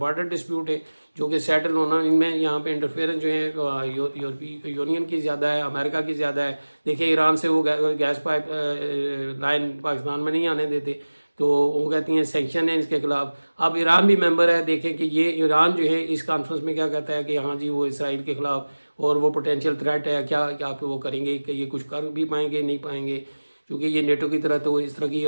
ڈسپیوٹ ہے جو کہ سیٹل ہونا, ان میں یہاں پہ انٹرفیئرنس جو ہے یورپی یونین کی زیادہ ہے, امریکہ کی زیادہ ہے. دیکھیں ایران سے وہ گیس پائپ لائن پاکستان میں نہیں آنے دیتے, تو وہ کہتی ہیں سینکشن ہے اس کے خلاف. اب ایران بھی ممبر ہے, دیکھیں کہ یہ ایران جو ہے اس کانفرنس میں کیا کہتا ہے کہ ہاں جی وہ اسرائیل کے خلاف اور وہ پوٹینشیل تھریٹ ہے, کیا پہ وہ کریں گے کہ یہ کچھ کر بھی پائیں گے نہیں پائیں گے, کیونکہ یہ نیٹو کی طرح تو اس طرح کی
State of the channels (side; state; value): both; inverted; correlation -1.00